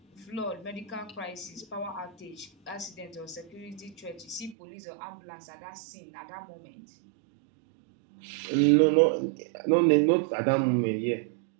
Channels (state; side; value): drops out; left; at 4.5 s